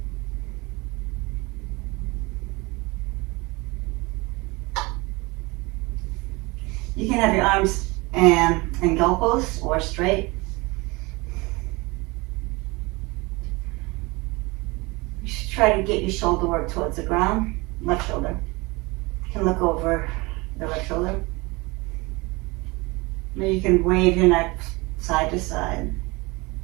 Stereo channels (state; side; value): quieter; left; 24.6 dB